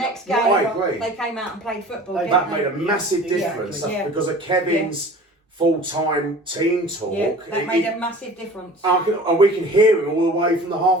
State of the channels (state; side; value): normal; both; correlation 0.43